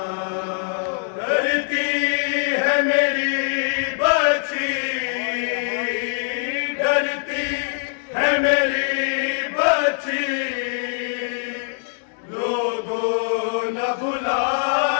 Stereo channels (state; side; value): silent; right; digital silence